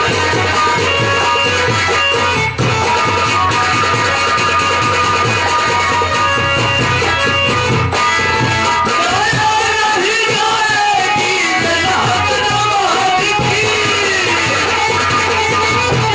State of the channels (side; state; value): left; noise; rumble, 28 dB below the sound